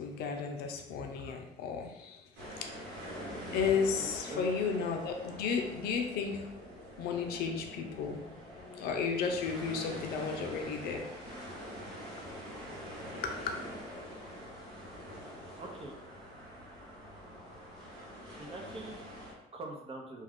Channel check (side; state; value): right; quieter; 4.5 dB